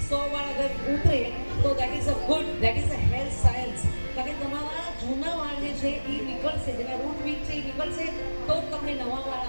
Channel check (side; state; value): both; inverted; correlation -1.00